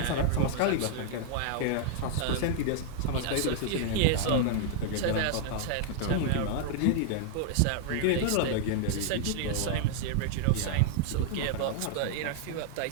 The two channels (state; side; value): different; both; correlation -0.01